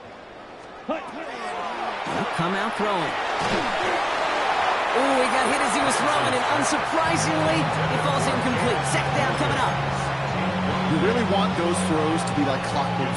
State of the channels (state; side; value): identical; both; correlation 1.00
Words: They'll come out throwing. Ooh, he got hit as he was throwing, and unsurprisingly, he falls incomplete. Second down coming up. You really want those throws to be like clockwork